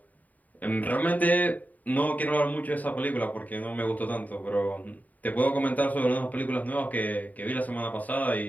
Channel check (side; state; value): right; late; 0.076 ms